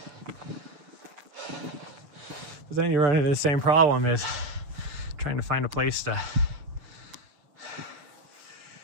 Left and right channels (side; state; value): left; late; 6.7 ms